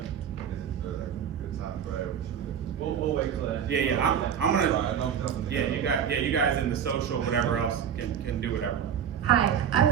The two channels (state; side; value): quieter; left; 8.4 dB